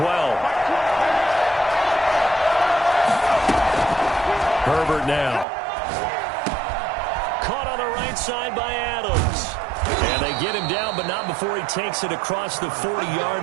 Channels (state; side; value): drops out; left; at 5.5 s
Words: Herbert now. Caught on the right side by Adams. And they get him down, but not before he takes it across the